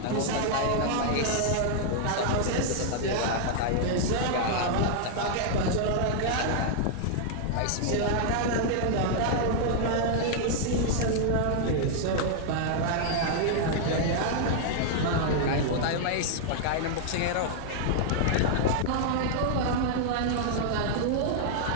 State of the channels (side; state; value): both; different; correlation -0.01